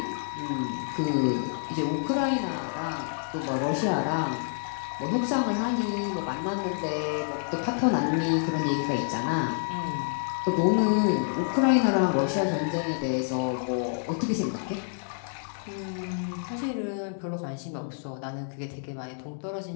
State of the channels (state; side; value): silent; right; digital silence